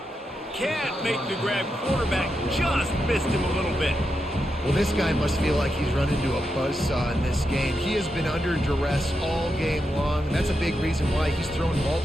Can't make the grab. Quarterback just missed him a little bit. Well, this guy must feel like he's run into a buzzsaw in this game. He has been under duress all game long, and that's a big reason why he's thrown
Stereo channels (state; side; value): normal; both; correlation 0.86